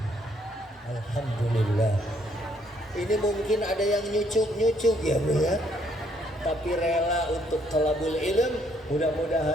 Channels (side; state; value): both; normal; correlation 0.68